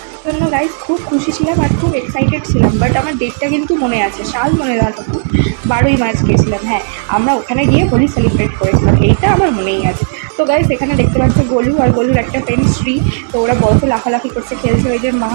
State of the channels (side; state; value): left; silent; digital silence